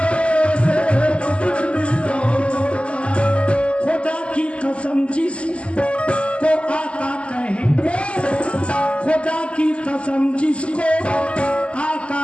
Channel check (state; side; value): late; right; 0.057 ms